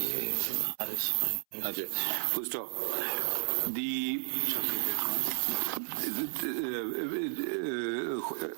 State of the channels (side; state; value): left; silent; 56 dB below the other